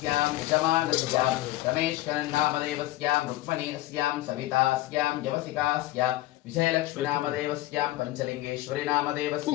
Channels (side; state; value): right; quieter; 16.3 dB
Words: यजमानस्यां रमेशकरन्नामदेवस्यां रुक्मणी अस्यां सवितास्यां यवसिकास्यां विजयलक्ष्मीनामदेवस्यां पञ्चलिङ्गेश्वरी